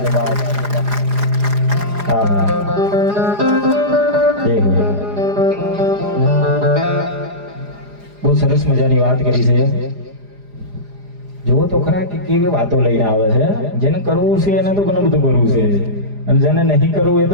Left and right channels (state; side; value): late; left; 4.9 ms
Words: હા, બહુ સરસ મજાની વાત કરી છે. જુઓ તો ખરા કે કેવી વાતો લઈને આવે છે. જેને કરવું છે એને તો ઘણું બધું કરવું છે, અને જેને નહીં કરવું એ